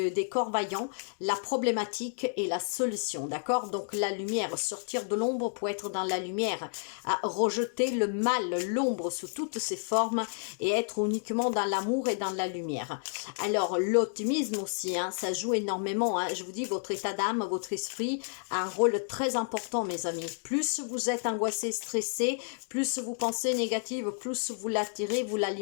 corps vaillants la problématique et la solution, d'accord? Donc la lumière, sortir de l'ombre pour être dans la lumière, à rejeter le mal, l'ombre sous toutes ses formes et être uniquement dans l'amour et dans la lumière. Alors l'optimisme aussi, hein, ça joue énormément, hein. Je vous dis, votre état d'âme, votre esprit a un rôle très important, mes amis. Plus vous êtes angoissé, stressé, plus vous pensez négative, plus vous l'attirez, vous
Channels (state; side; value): silent; right; digital silence